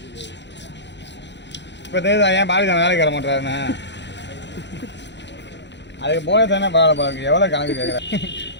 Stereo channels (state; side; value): late; right; 0.52 ms